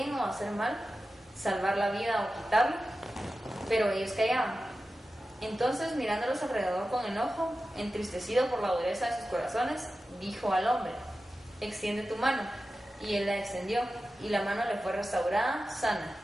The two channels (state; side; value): normal; both; correlation 0.93